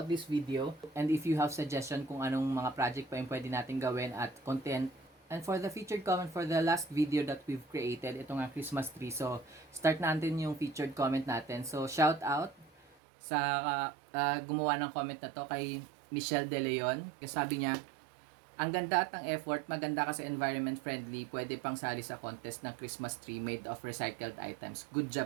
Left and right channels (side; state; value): left; drops out; at 13.0 s